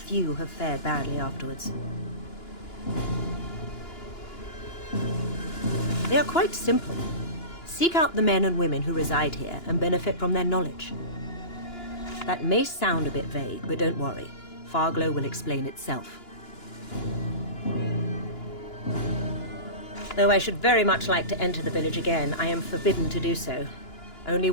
have fared badly afterwards. They are quite simple. Seek out the men and women who reside here and benefit from their knowledge. That may sound a bit vague, but don't worry. Farglow will explain itself. Though I should very much like to enter the village again, I am forbidden to do so. Only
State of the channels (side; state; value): right; late; 2.9 ms